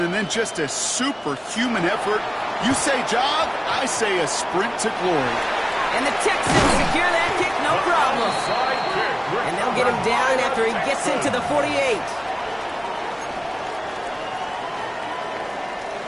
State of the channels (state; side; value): identical; both; correlation 1.00